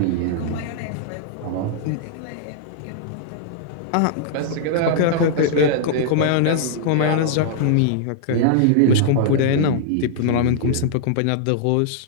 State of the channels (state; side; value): different; both; correlation -0.01